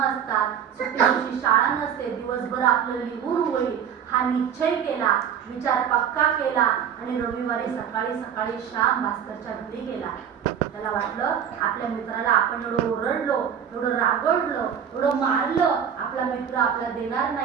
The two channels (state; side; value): quieter; left; 8.4 dB